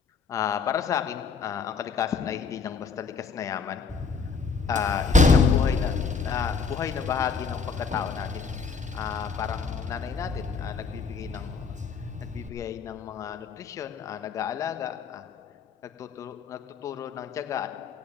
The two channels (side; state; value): right; quieter; 5.2 dB